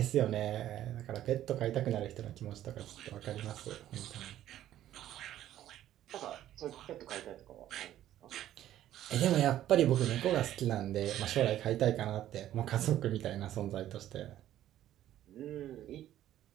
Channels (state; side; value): quieter; left; 12.6 dB